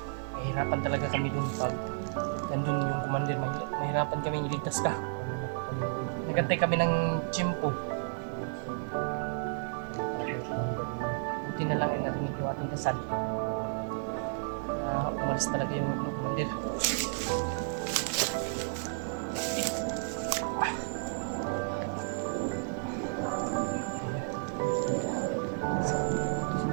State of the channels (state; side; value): silent; left; digital silence